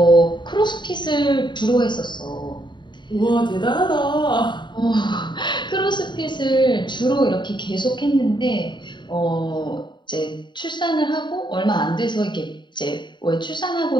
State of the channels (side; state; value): right; late; 0.22 ms